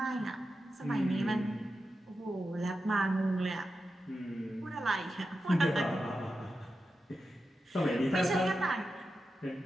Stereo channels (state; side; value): normal; both; correlation 0.90